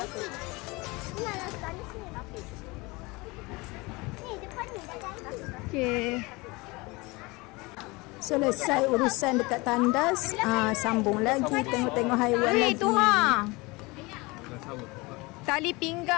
Ni nak tandas ni. Ni depan ni dah jadi. Okey. Selesai urusan dekat tandas, sambung lagi tengok-tengok haiwan lagi. Tu tali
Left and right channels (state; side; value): quieter; right; 24.4 dB